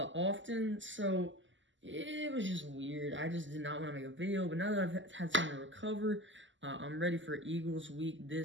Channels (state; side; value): late; left; 0.54 ms